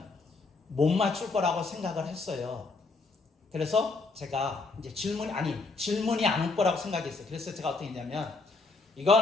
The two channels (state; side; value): quieter; right; 3.8 dB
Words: 못 맞출 거라고 생각을 했어요. 그래서 제가 이제 질문이 안 올 거라고 생각했어요. 그래서 제가 어떻게 했냐면,